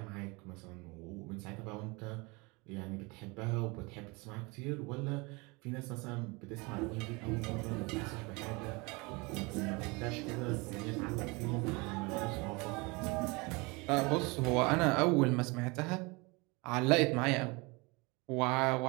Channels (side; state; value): left; quieter; 26.8 dB